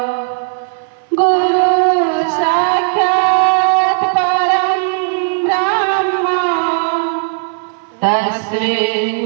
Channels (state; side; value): silent; left; 62 dB below the other